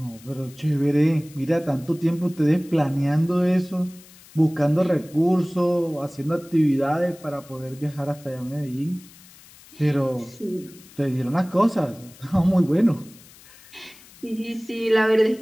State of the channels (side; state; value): left; noise; hiss, 23 dB below the sound